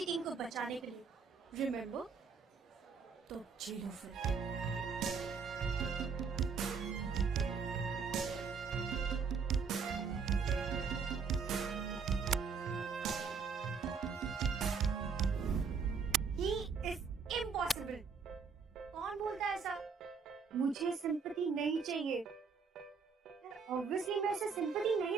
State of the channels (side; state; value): left; quieter; 5.6 dB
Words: टीम को बचाने के लिए। Remember? तो जीरो फिर। He is impossible. कौन बोलता है ऐसा? मुझे सिंपैथी नहीं चाहिए। ऑब्वियसली मैं उसे सिंपैथी